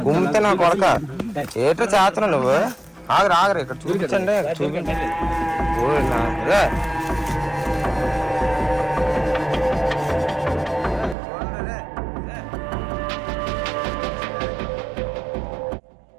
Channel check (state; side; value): drops out; left; at 11.2 s